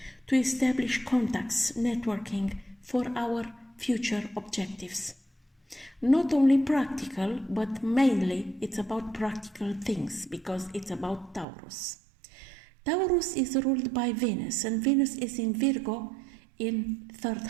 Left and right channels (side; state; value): left; drops out; at 11.5 s